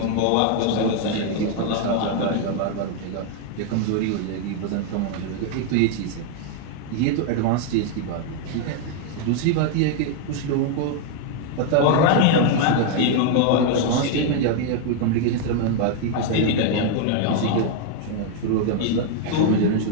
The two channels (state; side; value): different; both; correlation 0.00